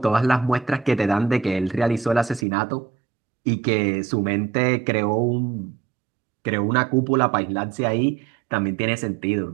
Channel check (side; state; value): left; drops out; at 2.5 s